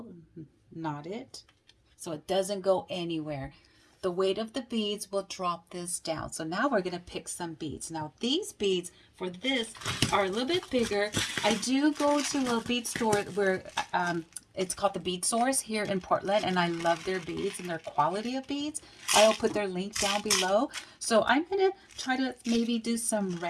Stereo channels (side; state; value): both; identical; correlation 1.00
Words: knot it so it doesn't go anywhere. The weight of the beads will drop this down. So now we're going to pick some beads. Now these beads for this are a little bit bigger. I do go to a bead store where it's called the Bead Source here in Portland, and I love their beads and their quality of beads. I'll put their link down below. So I'm going to try to maybe do some